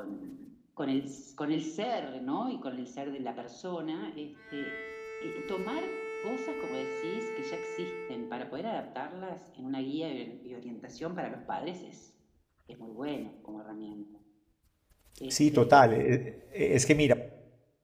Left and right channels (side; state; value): both; identical; correlation 1.00